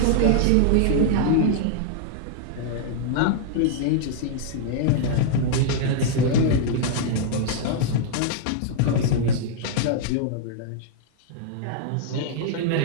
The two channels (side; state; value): both; different; correlation -0.01